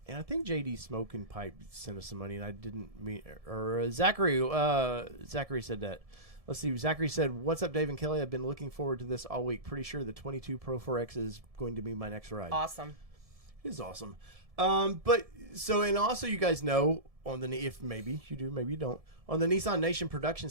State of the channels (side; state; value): left; late; 1.7 ms